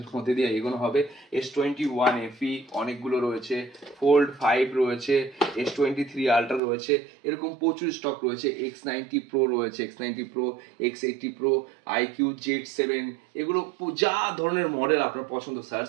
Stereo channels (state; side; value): drops out; left; at 6.6 s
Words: মধ্যে দিয়ে এগোনো হবে। S21 FE অনেকগুলো রয়েছে, ফোল্ড 5 রয়েছে, S23 আলট্রা রয়েছে, এরকম প্রচুর স্টক রয়েছে। X90 Pro রয়েছে, X90 Pro, X80 Pro, IQ Z7, এগুলো যা ধরনের মডেল আপনার পছন্দ